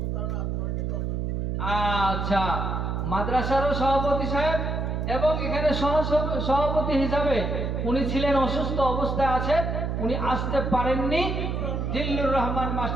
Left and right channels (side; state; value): right; noise; hum, 1 dB below the sound